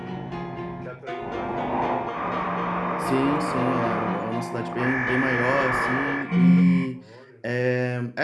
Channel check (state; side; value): identical; both; correlation 1.00